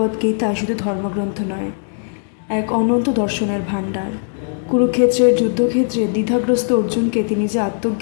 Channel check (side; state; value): right; silent; digital silence